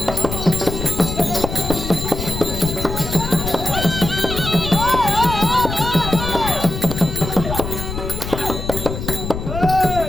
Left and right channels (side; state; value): left; noise; rumble, 6 dB below the sound